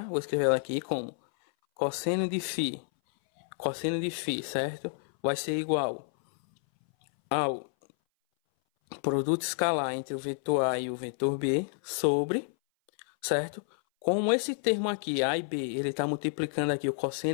Vou escrever ela aqui como cosseno de φ, certo? Vai ser igual ao produto escalar entre o vetor A e o vetor B sobre, certo? Como esse termo aqui, A e B, ele está multiplicando aqui o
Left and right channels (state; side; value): silent; right; 58 dB below the other